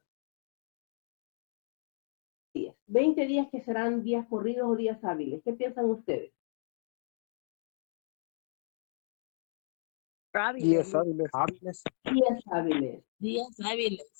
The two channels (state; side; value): silent; right; digital silence